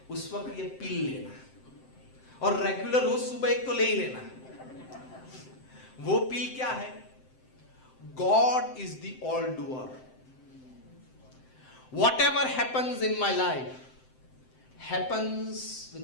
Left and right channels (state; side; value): late; right; 7.7 ms